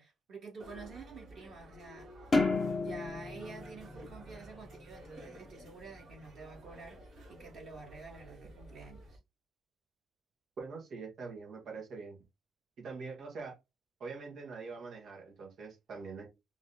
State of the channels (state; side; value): normal; both; correlation 0.85